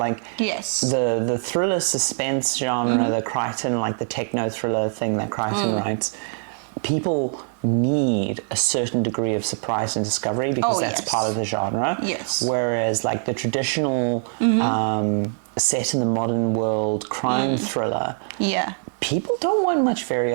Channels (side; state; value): left; silent; 63 dB below the other